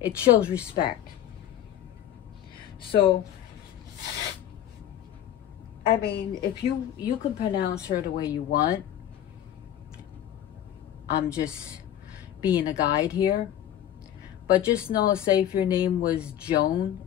shows respect. So, I mean, if you can pronounce her the way you want. I'm just being a guide here. But just know, say if your name was Joan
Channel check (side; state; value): right; quieter; 11.3 dB